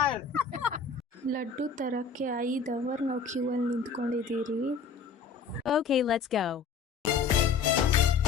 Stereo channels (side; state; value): right; quieter; 5.4 dB